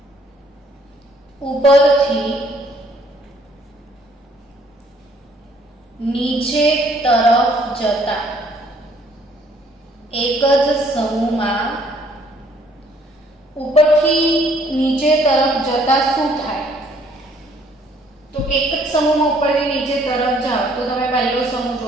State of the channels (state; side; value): normal; both; correlation 0.63